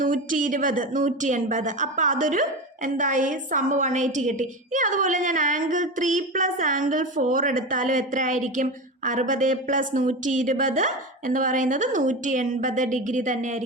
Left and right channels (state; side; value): normal; both; correlation 0.23